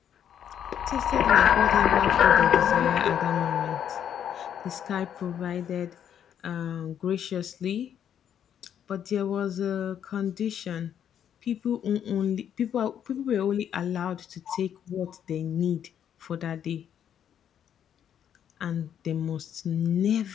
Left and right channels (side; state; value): right; quieter; 9.3 dB